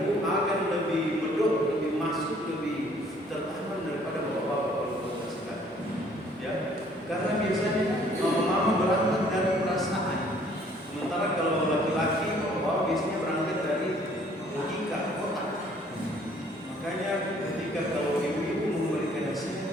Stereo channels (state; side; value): normal; both; correlation 0.59